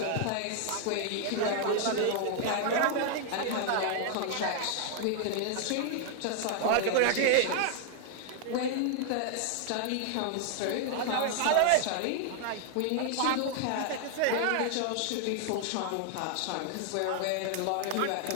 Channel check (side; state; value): both; different; correlation 0.00